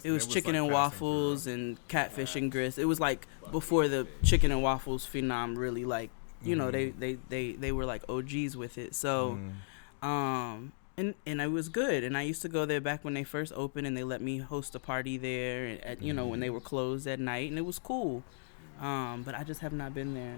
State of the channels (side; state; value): right; silent; digital silence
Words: It was chicken and waffles and catfish and grits. It was like before the chicken and waffles phenom really like, you know, they were like OGs with it. So, and it was good. And I used to go there back when they first opened, and they let me host a party there at you know, when they were closed at night, and it was cool. But I just have not been there